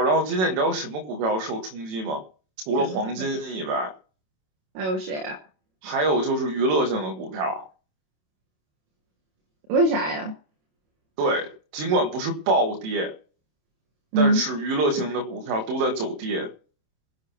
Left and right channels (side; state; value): left; late; 27 ms